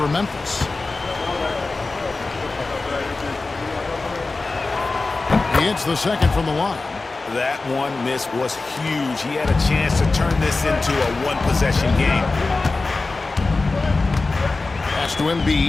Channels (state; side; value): quieter; right; 3.6 dB